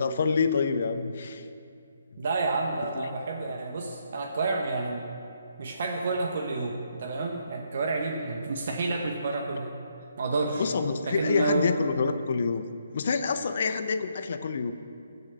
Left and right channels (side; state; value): both; inverted; correlation -0.74